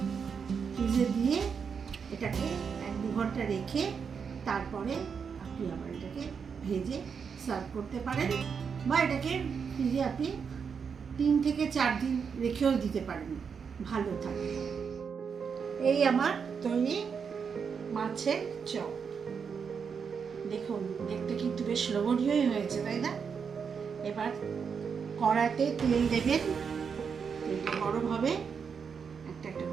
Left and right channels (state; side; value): quieter; left; 6.3 dB